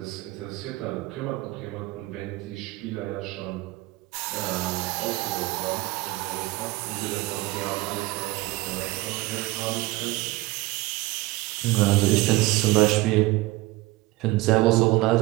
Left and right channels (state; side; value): quieter; left; 20.0 dB